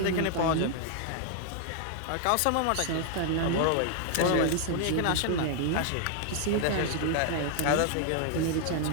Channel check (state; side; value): different; both; correlation 0.00